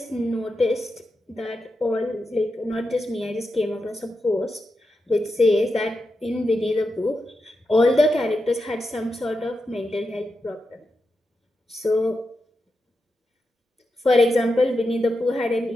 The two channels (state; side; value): normal; both; correlation 0.88